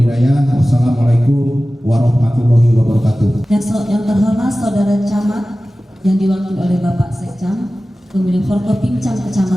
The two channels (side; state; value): both; normal; correlation 0.96